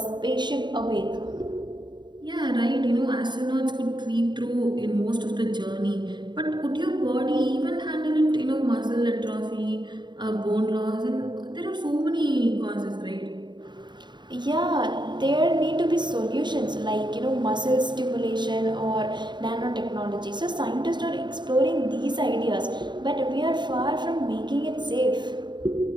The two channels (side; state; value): left; late; 0.22 ms